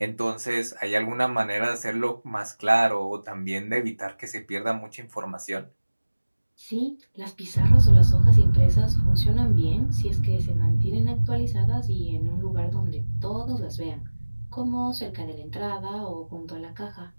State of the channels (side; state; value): both; inverted; correlation -1.00